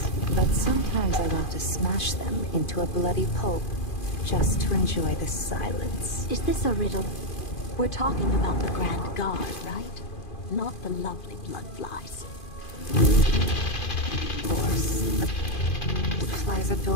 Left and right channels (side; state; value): right; late; 2.5 ms